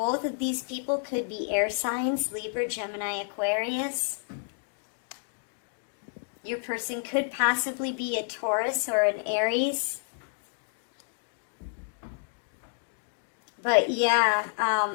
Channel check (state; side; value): silent; right; digital silence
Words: of these people could be air signs, Libra, Gemini, Aquarius. Your person could possibly be a Taurus or an Aries. But yeah,